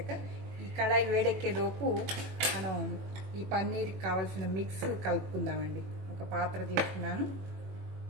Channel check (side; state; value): left; late; 21 ms